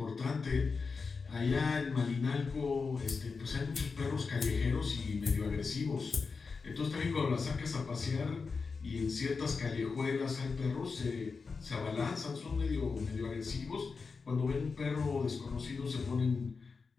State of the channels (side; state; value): right; quieter; 4.8 dB